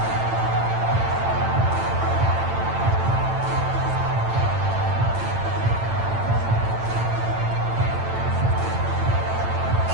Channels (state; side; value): late; left; 8.9 ms